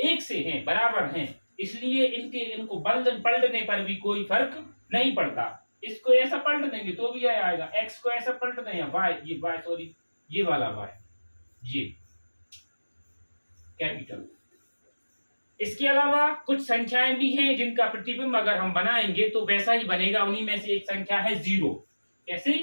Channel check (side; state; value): both; inverted; correlation -1.00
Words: से हैं, बराबर हैं, इसलिए इनको पलटने पर भी कोई फर्क नहीं पड़ता। इसको ऐसा पलट देंगे तो भी यह आएगा, एक्स को ऐसा पलट दें, ये वाला वाई, ये कैपिटल। इसके अलावा कुछ संख्याएं भी हैं जिनका प्रतिबिंब अगर हम बनाएंगे तो वैसा ही बनेगा। उन्हीं में से एक संख्या है 0। कैसे?